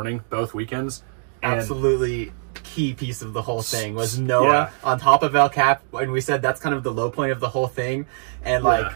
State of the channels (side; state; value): left; silent; digital silence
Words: both weekends. And Absolutely key piece of the whole thing was Noah on top of El Cap, and we said that's kind of the low point of the whole thing. And